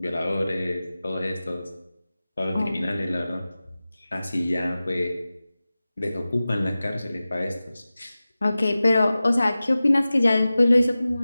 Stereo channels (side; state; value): both; inverted; correlation -0.96